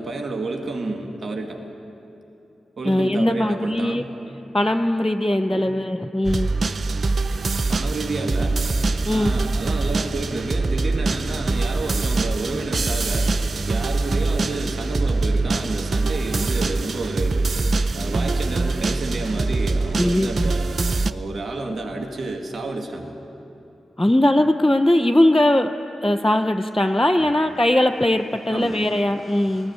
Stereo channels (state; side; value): normal; both; correlation 0.94